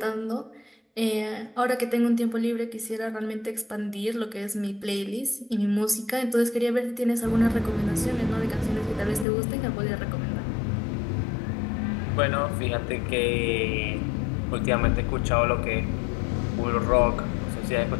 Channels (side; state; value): right; drops out; at 9.2 s